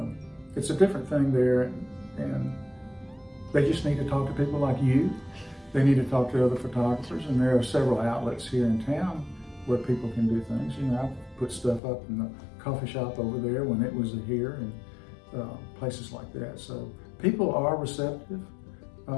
it's a different thing there, and they just need to talk to people like you. They need to talk to other photographers, and there are several outlets here in town where people can do things. I've put stuff up in the coffee shop over there when it was here, and places like that. So people are receptive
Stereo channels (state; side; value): drops out; right; at 11.8 s